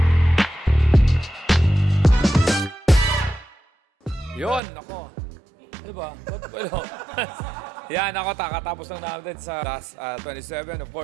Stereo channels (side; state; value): left; drops out; at 4.6 s